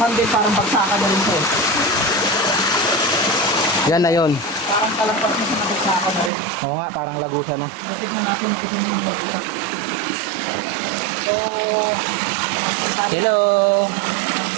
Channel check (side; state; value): left; drops out; at 6.3 s